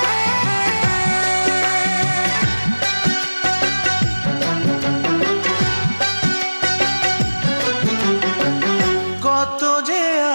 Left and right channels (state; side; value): inverted; both; correlation -1.00